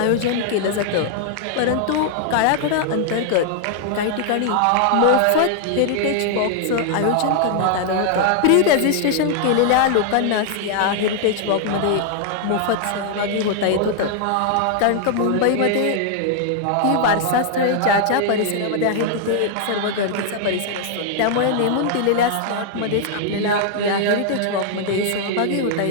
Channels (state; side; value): different; both; correlation 0.00